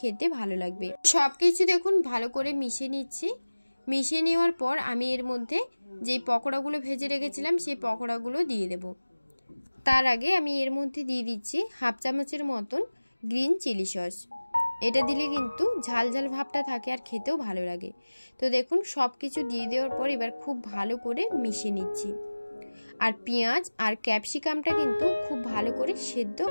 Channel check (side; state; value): both; inverted; correlation -1.00